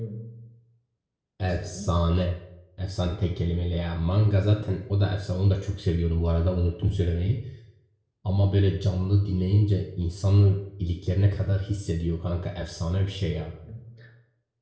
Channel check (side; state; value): both; identical; correlation 1.00